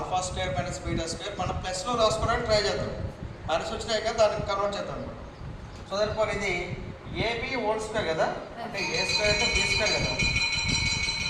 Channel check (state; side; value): identical; both; correlation 1.00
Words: square minus beta square మనం ప్లస్లో రాసుకోవడానికి try చేద్దాం. మైనస్ వచ్చినాయి కదా, దానికి కన్వర్ట్ చేద్దాం అనమాట. సో దానిపోయి ఇది ఏబి హోల్ స్క్వేర్ కదా, అంటే ఏ స్క్వేర్ అంటే బి స్క్వేర్ కదా.